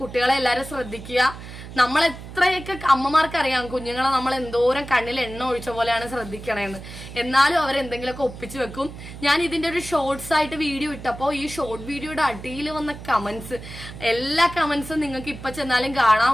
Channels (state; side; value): noise; right; hum, 13 dB below the sound